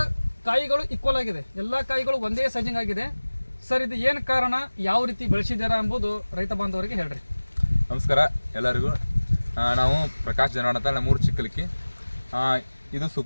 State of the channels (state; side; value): inverted; both; correlation -1.00